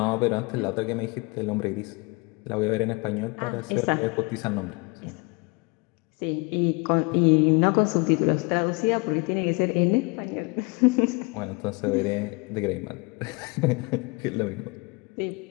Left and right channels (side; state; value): right; quieter; 28.8 dB